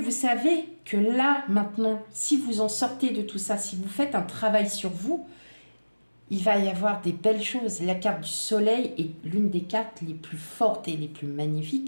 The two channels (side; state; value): both; inverted; correlation -1.00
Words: savez que là, maintenant, si vous en sortez de tout ça, si vous faites un travail sur vous, il va y avoir des belles choses. La carte du soleil est l'une des cartes les plus fortes et les plus magnifiques